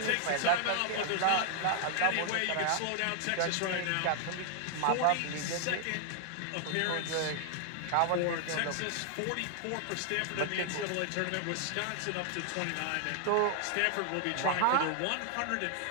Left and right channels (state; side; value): different; both; correlation 0.00